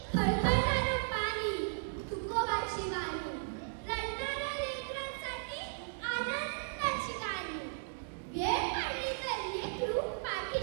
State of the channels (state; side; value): silent; left; digital silence